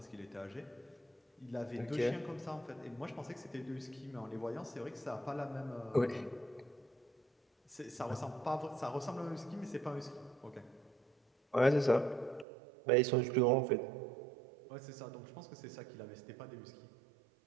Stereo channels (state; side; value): drops out; left; at 12.5 s